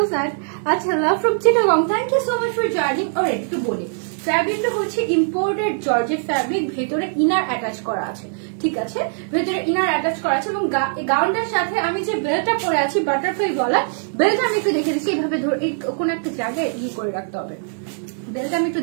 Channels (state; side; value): silent; left; digital silence